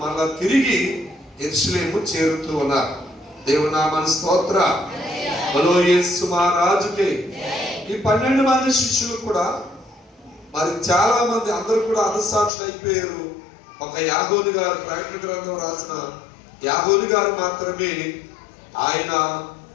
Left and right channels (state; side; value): drops out; right; at 12.5 s